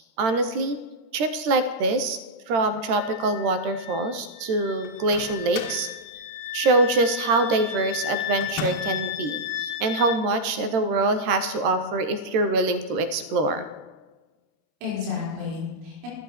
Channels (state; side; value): late; left; 13 ms